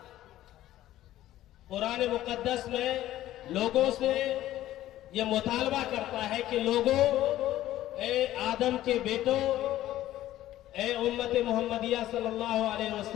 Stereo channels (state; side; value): quieter; right; 14.0 dB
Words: قرآن مقدس میں لوگوں سے یہ مطالبہ کرتا ہے کہ لوگوں، اے آدم کے بیٹوں، اے امت محمدیہ صلی اللہ علیہ